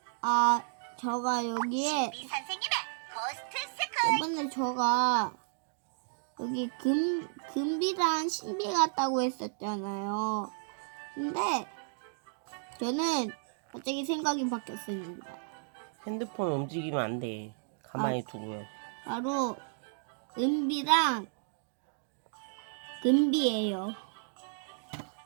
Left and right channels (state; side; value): silent; left; digital silence